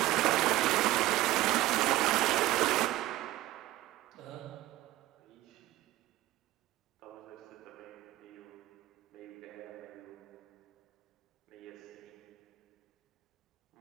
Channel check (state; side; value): quieter; left; 15.6 dB